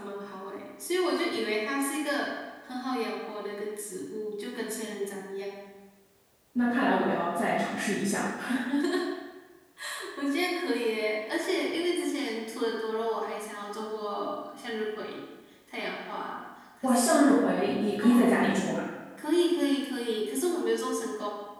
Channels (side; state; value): both; identical; correlation 1.00